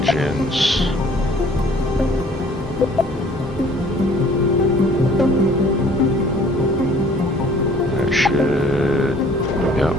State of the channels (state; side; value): normal; both; correlation 0.55